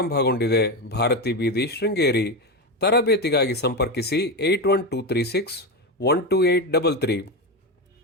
ಭಾರತಿ ಬೀದಿ, ಶೃಂಗೇರಿ. ತರಬೇತಿಗಾಗಿ ಸಂಪರ್ಕಿಸಿ 8123612833.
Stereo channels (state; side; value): normal; both; correlation 0.15